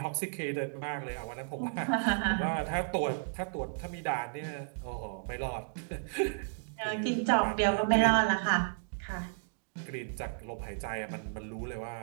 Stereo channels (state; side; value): silent; left; digital silence